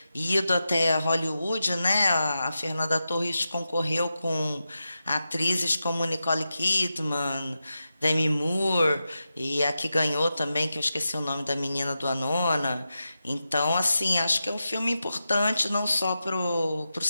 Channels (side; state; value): both; inverted; correlation -0.91